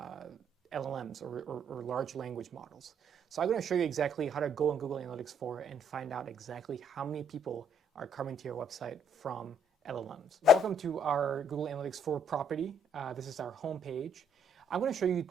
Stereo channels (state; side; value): normal; both; correlation 0.67